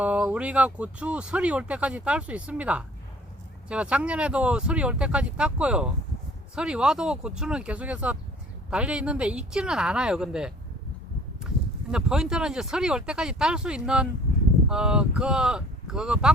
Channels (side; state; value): both; normal; correlation 0.52